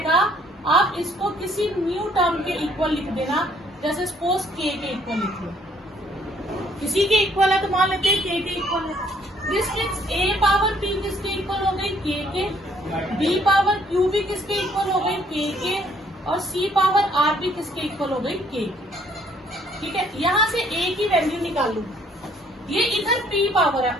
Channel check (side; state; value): both; normal; correlation 0.63